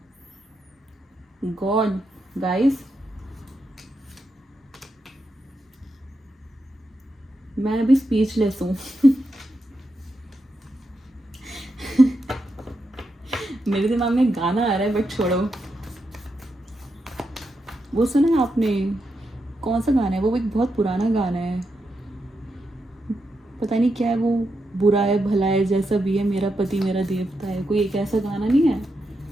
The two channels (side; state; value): both; normal; correlation 0.85